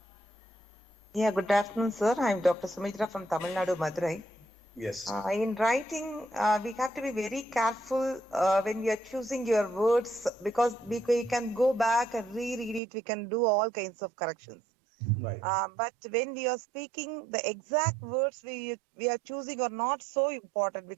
Yeah, good afternoon, sir. I'm Dr. Sumitra from Tamil Nadu, Madurai. Yes. In writing, we have to be very careful when we are choosing your words, because we can go back and reread it. We can do all kinds of corrections. Right. But when we are speaking, the exact words we are choosing are not so important,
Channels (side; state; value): left; drops out; at 12.8 s